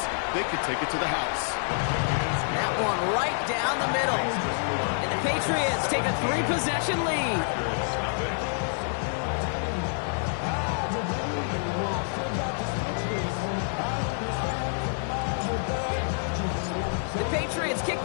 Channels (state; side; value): silent; right; 60 dB below the other